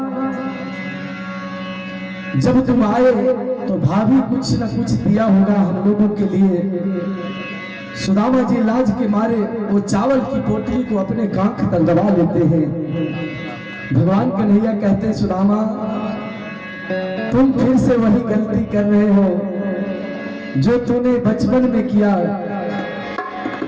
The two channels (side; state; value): both; identical; correlation 1.00